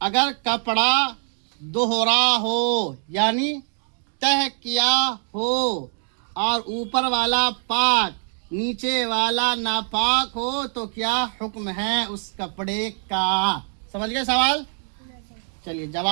अगर कपड़ा दोहरा हो यानी तह किया हो और ऊपर वाला पाक नीचे वाला नापाक हो तो क्या हुक्म है उस कपड़े का? समझ गए सवाल? चलिए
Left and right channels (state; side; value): silent; left; 56 dB below the other